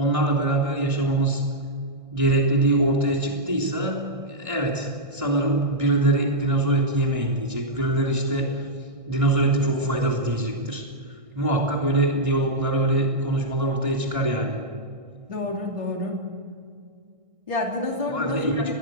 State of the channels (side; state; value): left; late; 1.6 ms